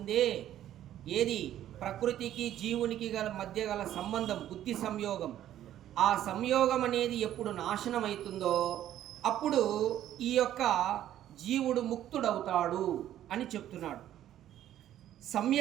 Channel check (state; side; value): quieter; left; 11.9 dB